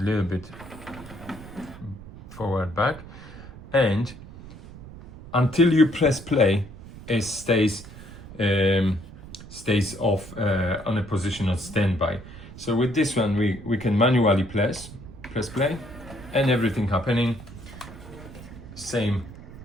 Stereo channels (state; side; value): noise; right; rumble, 16 dB below the sound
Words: a little bit forward, back, and until you press play, it stays off on a position of standby. So with this one, we can manually press play, and everything happening. Same